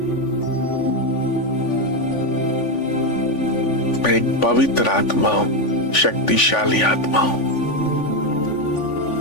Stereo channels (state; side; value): late; right; 3.5 ms